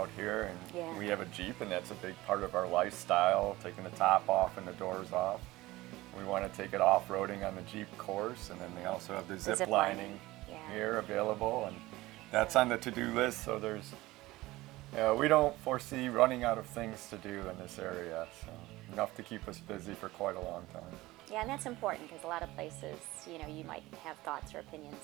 here, and we have a Jeep, and that's a big part of our lifestyle, taking the top off and the doors off. We want to take it off-roading on the Jeep course, and then they also have the zip lining here available, and that's on the to-do list. So we don't foresee running out of things to do in this area, so enough to keep us busy for quite a long time. Yeah, and that's important because a lot of places, you might have thoughts or opinions,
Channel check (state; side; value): quieter; left; 18.8 dB